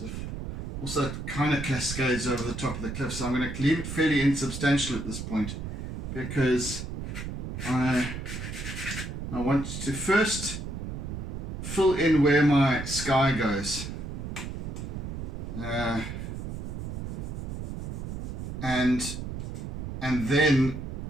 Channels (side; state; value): right; noise; rumble, 6 dB below the sound